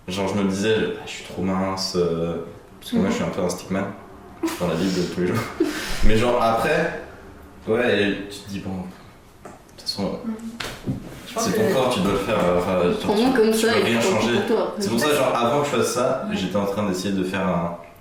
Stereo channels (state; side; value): identical; both; correlation 1.00